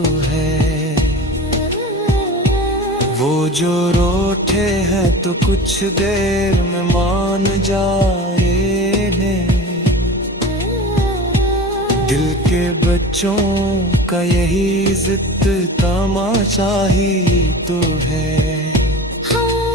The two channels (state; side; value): normal; both; correlation 0.35